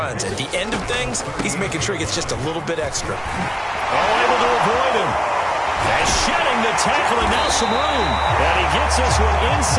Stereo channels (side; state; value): both; identical; correlation 1.00